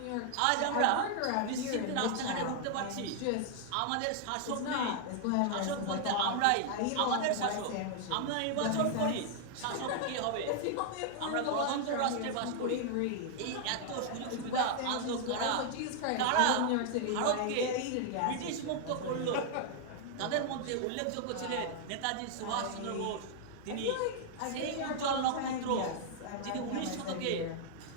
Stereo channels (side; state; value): both; different; correlation 0.00